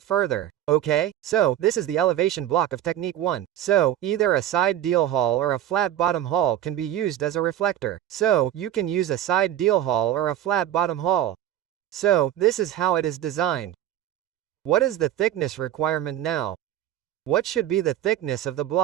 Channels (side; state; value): left; quieter; 12.0 dB